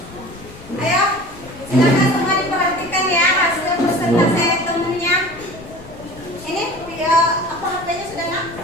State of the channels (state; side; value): noise; left; rumble, 19 dB below the sound